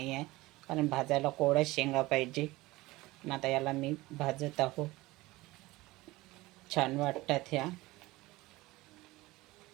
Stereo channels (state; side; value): quieter; left; 19.9 dB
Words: आहे कारण भाजायला कोवळ्या शेंगा पाहिजे. पण आता याला मी भाजत आहो. छान वाटतात ह्या.